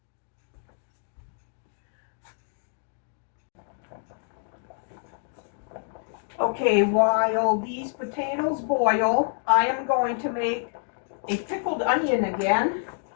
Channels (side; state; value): right; silent; digital silence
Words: Okay, while these potatoes boil, I am going to make a pickled onion again.